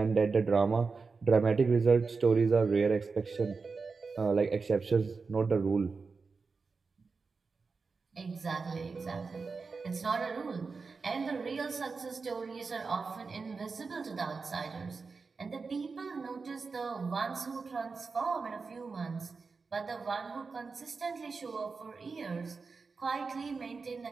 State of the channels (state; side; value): quieter; left; 4.6 dB